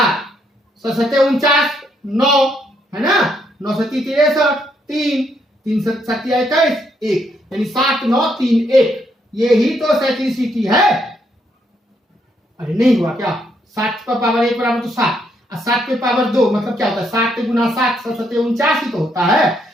7 49, 9 है ना, 9 7 63, 3 3 7 21, 1 यानी 7 9 3 1। ये ही तो साइक्लिसिटी है। अरे नहीं हुआ क्या? 7 पर पावर 1 बराबर तो 7, और 7 पे पावर 2 मतलब क्या होता है? 7 गुना 7 7 49 ही तो होता है,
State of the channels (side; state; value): both; normal; correlation 0.74